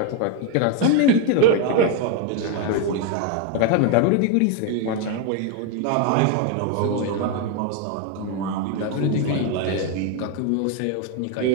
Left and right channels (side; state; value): both; different; correlation 0.01